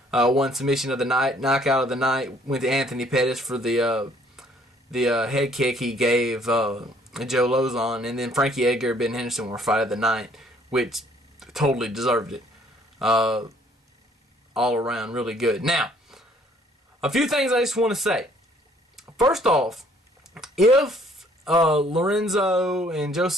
won submission of the night. Knockout of the night went to Anthony Pettis for the head kick he gave Joe Lozon. And then Frankie Edgar and Ben Henderson were fight of the night, which totally deserved it. All around really good. Now, a few things I just want to say. First off, if Lorenzo and Joe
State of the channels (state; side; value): normal; both; correlation 0.61